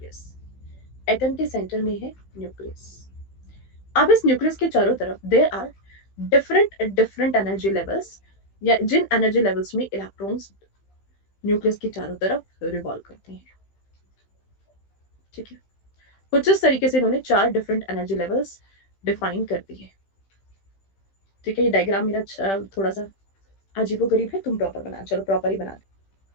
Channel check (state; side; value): late; right; 15 ms